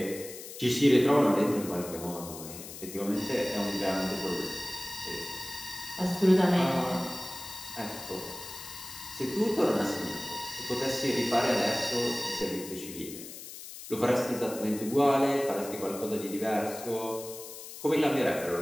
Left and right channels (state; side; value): noise; left; hiss, 12 dB below the sound